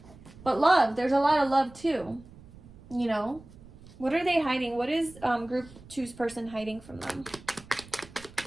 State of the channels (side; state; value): right; noise; rumble, 21 dB below the sound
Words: But love, there's a lot of love too. You know? What are they hiding? What is group 2's person hiding from them?